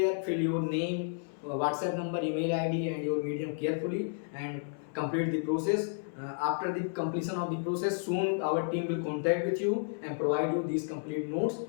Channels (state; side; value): silent; right; 57 dB below the other